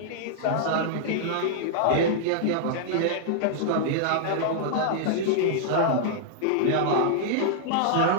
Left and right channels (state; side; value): different; both; correlation -0.01